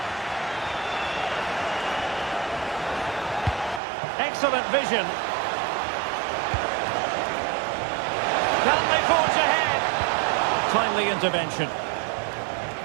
Excellent vision. Can they forge ahead? Timely intervention.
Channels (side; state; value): left; drops out; at 3.8 s